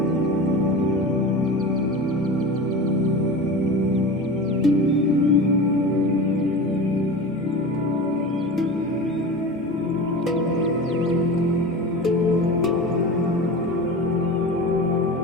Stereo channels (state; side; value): normal; both; correlation 0.30